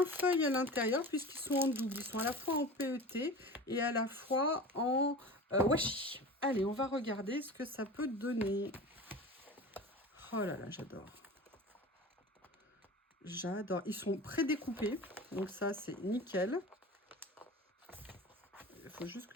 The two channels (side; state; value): both; normal; correlation 0.34